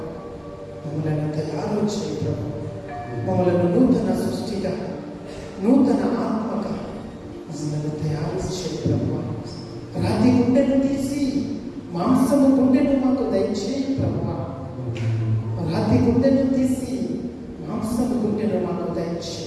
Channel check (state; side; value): identical; both; correlation 1.00